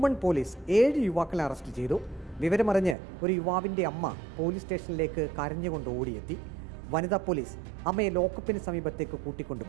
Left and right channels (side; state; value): left; drops out; at 3.0 s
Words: പോലീസ് 7 യുവാക്കളെ അറസ്റ്റ് ചെയ്തു. വിവരമറിഞ്ഞ് ഒരു യുവാവിന്റെ അമ്മ പോലീസ് സ്റ്റേഷനിലേക്ക് കരഞ്ഞുകൊണ്ട് ഓടിയെത്തി. വനിതാ പോലീസ് അമ്മയെ ലോക്കപ്പിന് സമീപത്തേക്ക്